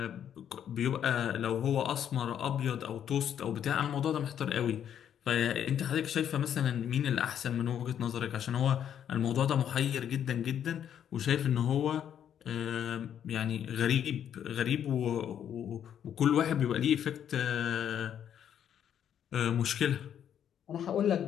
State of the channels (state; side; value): quieter; right; 9.4 dB